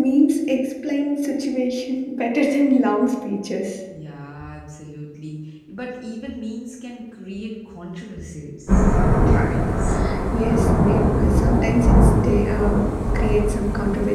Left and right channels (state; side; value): identical; both; correlation 1.00